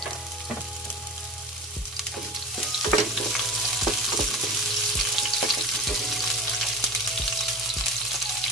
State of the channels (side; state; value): both; normal; correlation 0.34